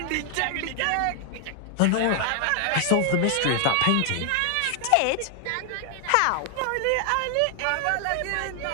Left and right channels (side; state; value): both; different; correlation 0.00